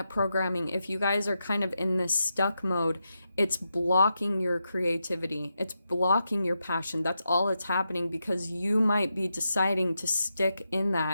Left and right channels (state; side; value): inverted; both; correlation -0.86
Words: programming. If you guys are kind of in this stuck mode, it's blocking your creativity. It's blocking your passion. That's all that's happening because you might be deciding to stick in